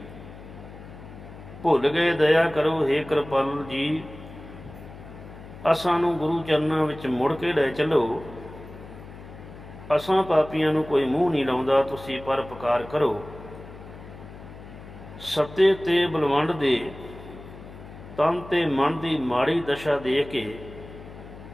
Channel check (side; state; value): left; noise; hum, 16 dB below the sound